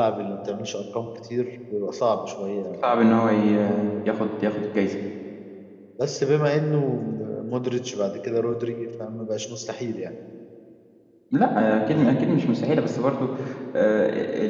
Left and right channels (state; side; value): identical; both; correlation 1.00